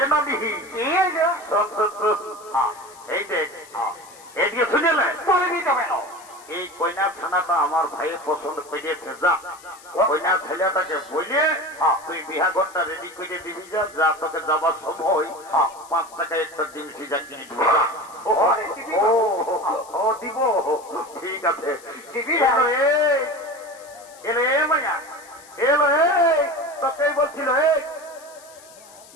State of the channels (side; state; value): left; noise; hiss, 22 dB below the sound